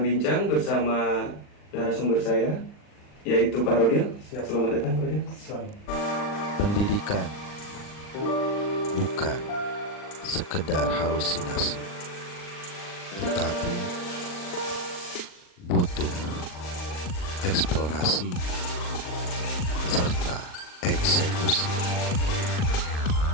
bersama narasumber saya, yaitu Pak Rodil. Selamat datang, Pak Rodil. Pendidikan bukan sekedar halusinasi, tetapi butuh eksplorasi serta eksekusi.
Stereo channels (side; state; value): right; late; 39 ms